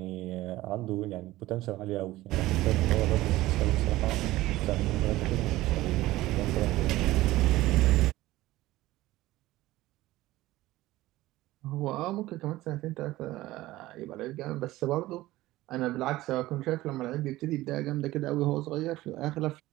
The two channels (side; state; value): left; quieter; 17.2 dB